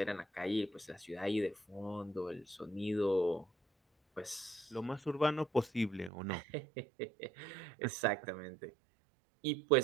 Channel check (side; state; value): left; drops out; at 6.1 s